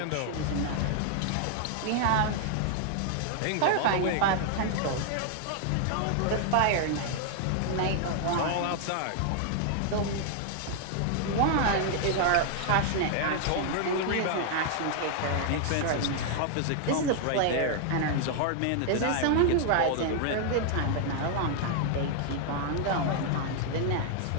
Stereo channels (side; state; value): both; different; correlation 0.00